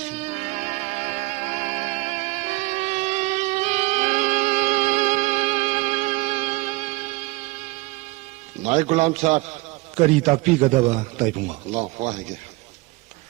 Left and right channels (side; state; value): left; quieter; 22.9 dB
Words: नाय गुलाम साहब करी ताकपीगदबा ताइबुंगा ला वाहेगे